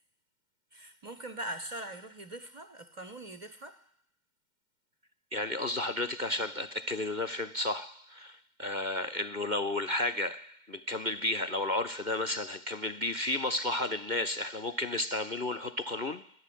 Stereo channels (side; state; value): left; late; 2.1 ms